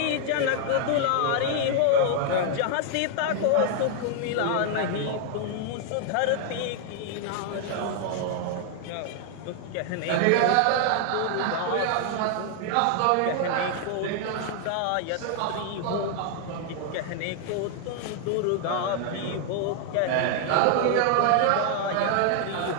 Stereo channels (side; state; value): both; different; correlation 0.00